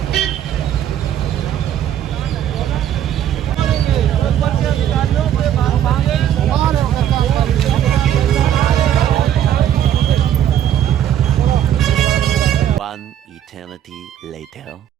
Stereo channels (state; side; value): quieter; left; 10.5 dB